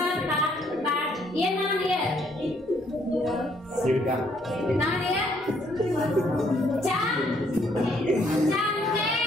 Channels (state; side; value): normal; both; correlation 0.68